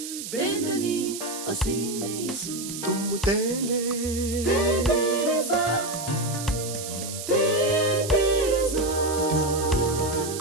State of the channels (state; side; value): noise; right; hiss, 8 dB below the sound